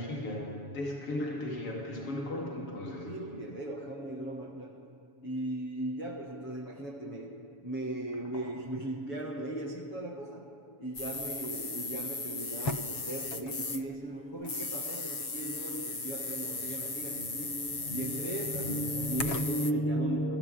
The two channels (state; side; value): late; right; 7.1 ms